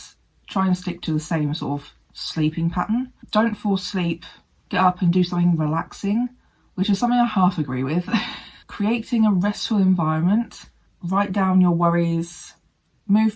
try and stick to the same sort of sleeping pattern. Don't force sleep, get up and do something relaxing, which is something I half agree with. Creating a restful environment, write down your worries,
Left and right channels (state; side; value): identical; both; correlation 1.00